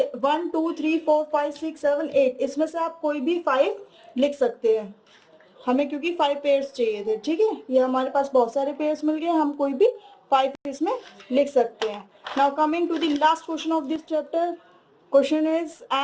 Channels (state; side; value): identical; both; correlation 1.00